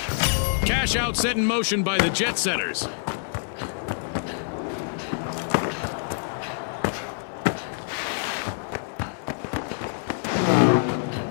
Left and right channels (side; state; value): right; silent; 58 dB below the other